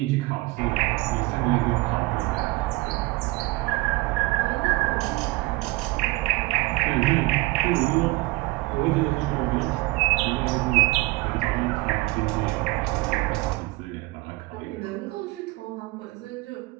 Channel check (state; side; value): quieter; left; 21.9 dB